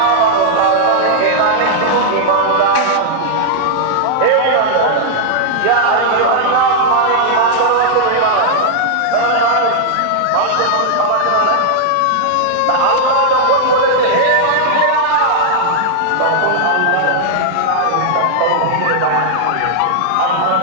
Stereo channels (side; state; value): both; different; correlation -0.01